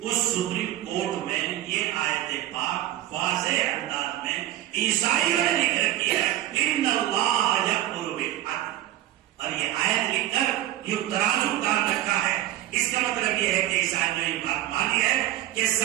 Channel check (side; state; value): left; quieter; 14.0 dB